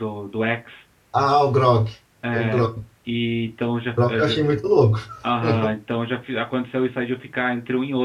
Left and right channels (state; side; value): identical; both; correlation 1.00